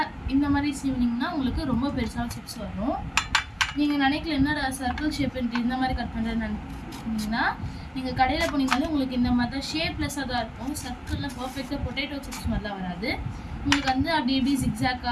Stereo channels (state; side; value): identical; both; correlation 1.00